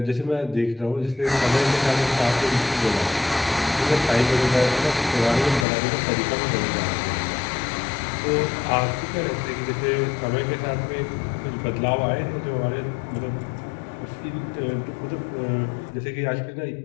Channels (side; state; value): right; drops out; at 5.7 s